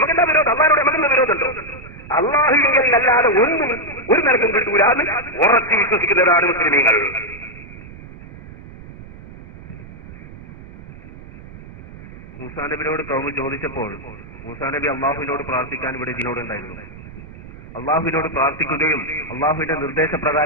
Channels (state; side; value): noise; right; rumble, 16 dB below the sound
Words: വിരോധം? അള്ളാഹിനോട് നമുക്കെന്താ വിരോധമുണ്ടോ? അള്ളാഹുവിൽ അല്ലാതെ ഒന്നും ഒരു നിലക്കും കിട്ടൂല എന്ന് ഉറച്ചു വിശ്വസിക്കുന്നവരാണ് മുസ്ലിമീങ്ങൾ. മൂസാ നബിയോട് കൗമ് ചോദിച്ചപ്പോൾ മൂസാ നബി അള്ളാഹുവിനോട് പ്രാർത്ഥിക്കാൻ ഇവിടെ ഇതിനോടുണ്ടായിരുന്നു. അള്ളാഹുവിനോട് പ്രാർത്ഥിക്കുകയും അള്ളാഹുവിന്റെ